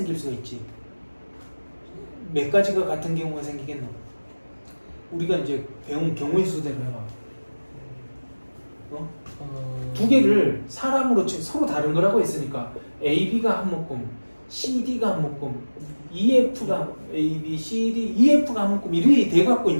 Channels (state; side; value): inverted; both; correlation -1.00